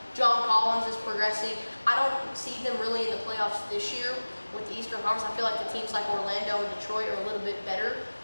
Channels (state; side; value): inverted; both; correlation -1.00